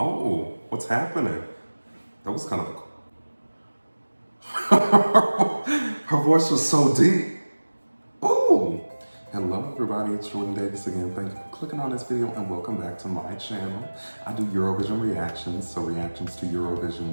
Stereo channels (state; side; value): inverted; both; correlation -1.00